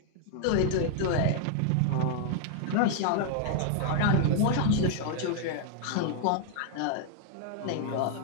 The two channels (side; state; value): both; different; correlation 0.00